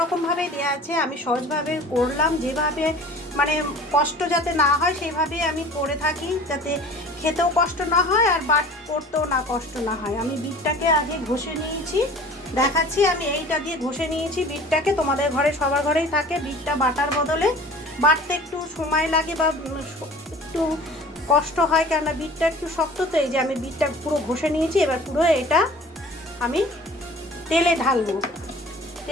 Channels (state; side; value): normal; both; correlation 0.44